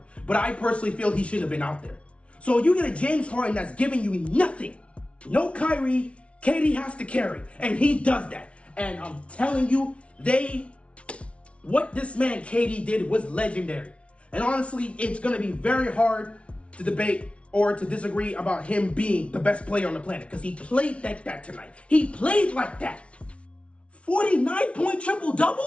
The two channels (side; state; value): right; late; 0.061 ms